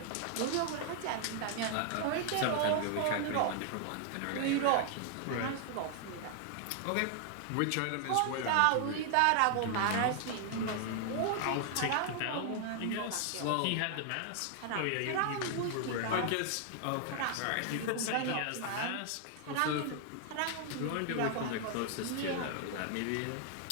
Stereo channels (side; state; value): both; different; correlation 0.00